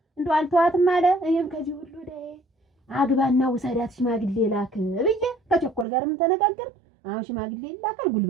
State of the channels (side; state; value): left; drops out; at 5.9 s